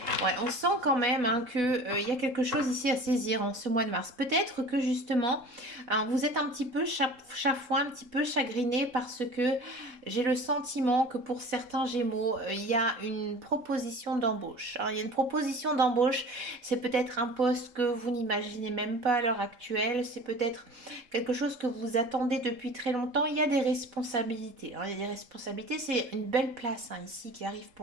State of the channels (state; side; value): late; left; 4.0 ms